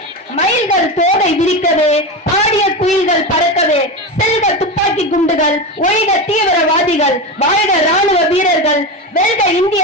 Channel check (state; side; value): normal; both; correlation 0.19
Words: மயில்கள் தோகை விரிக்கவே, பாடிய குயில்கள் பறக்கவே, செல்க துப்பாக்கி குண்டுகள், ஒழிக தீவிரவாதிகள், வாழ்க ராணுவ வீரர்கள், வெல்க இந்திய